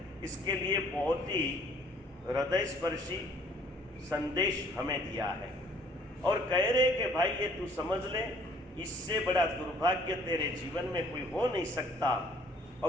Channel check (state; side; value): normal; both; correlation 0.58